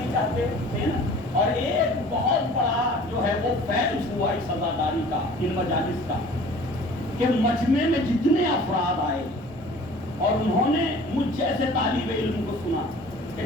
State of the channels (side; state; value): both; normal; correlation 0.47